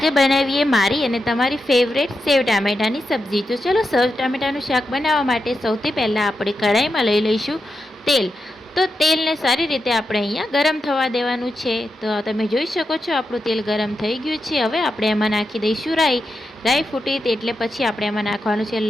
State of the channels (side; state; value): both; normal; correlation 0.87